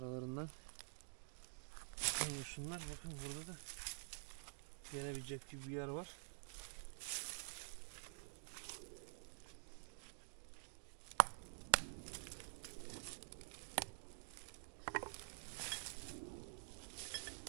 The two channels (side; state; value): left; silent; digital silence